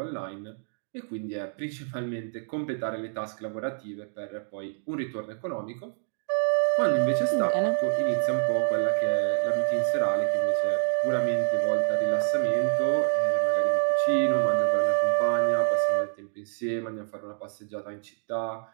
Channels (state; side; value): silent; left; digital silence